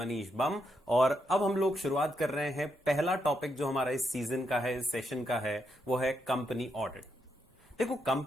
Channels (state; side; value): normal; both; correlation 0.81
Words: बम। और अब हम लोग शुरुआत कर रहे हैं। पहला टॉपिक जो हमारा इस सीजन का है, इस सेशन का है, वो है कंपनी ऑडिट। देखो,